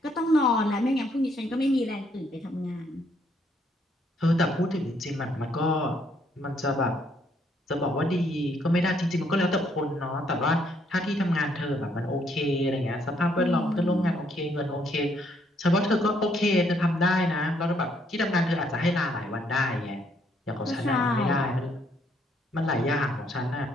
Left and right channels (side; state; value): both; normal; correlation 0.70